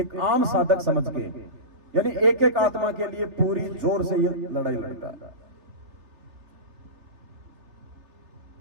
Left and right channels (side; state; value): left; late; 3.3 ms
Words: आम साधक समझ के, यानी एक एक आत्मा के लिए पूरी जोर से ये लड़ाई लड़ता है।